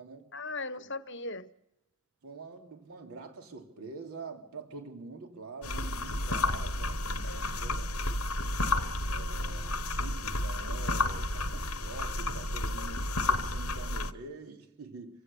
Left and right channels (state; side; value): normal; both; correlation 0.56